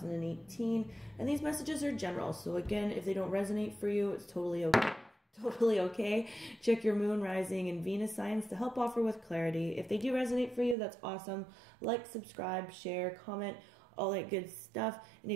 And these messages are general, so again, if they don't resonate for you, it's totally okay. Totally okay. Check your moon, rising, and Venus signs to help offer with clarity. If they do resonate for you, that's awesome. Like, subscribe, share, comment, all that good stuff. And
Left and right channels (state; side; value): drops out; left; at 10.8 s